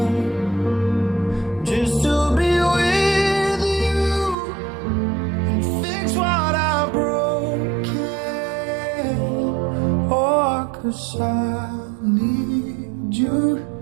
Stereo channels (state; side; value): drops out; left; at 4.4 s